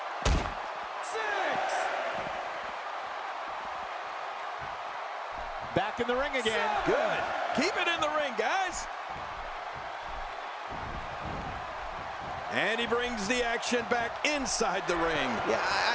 6. Back in the ring again. Good. Keep it in the ring, guys. And he brings the action back inside the ring. Yeah,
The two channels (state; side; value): identical; both; correlation 1.00